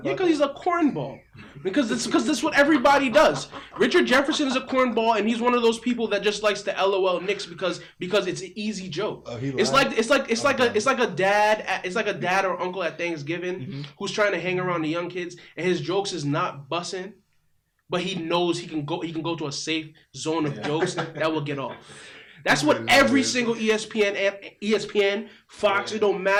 it? Yeah, because he's a cornball. Because that's what everybody does. Richard Jefferson is a cornball, and he's one of those people that just likes to LOL Knicks because it's an easy joke. Oh, he lied? It's like a dad or uncle at Thanksgiving who's trying to hang around the young kids, and his jokes is not bussing, but he knows he can go to a safe zone of jokes that will get off. That's what every single ESPN, Fox, it don't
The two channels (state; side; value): identical; both; correlation 1.00